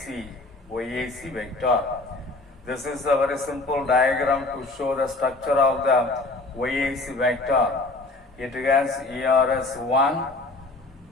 vector. This is a very simple diagram to show the structure of the YAC vector. It has ERS1,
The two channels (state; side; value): quieter; right; 3.1 dB